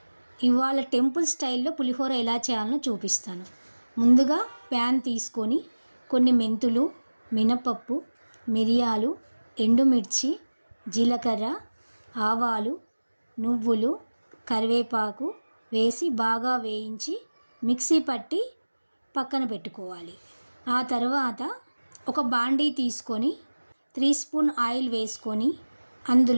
ఇవాళ టెంపుల్ స్టైల్లో పులిహోర ఎలా చేయాలో చూపిస్తాను. ముందుగా ప్యాన్ తీసుకొని కొన్ని మెంతులు, మినపప్పు, మిరియాలు, ఎండుమిర్చి, జీలకర్ర, ఆవాలు, నువ్వులు, కరివేపాకు వేసి బాగా వేయించి మిక్సీ పట్టి పక్కన పెట్టుకోవాలి. ఆ తర్వాత ఒక బాండీ తీసుకొని 3 స్పూన్ ఆయిల్ వేసుకొని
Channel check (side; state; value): both; inverted; correlation -1.00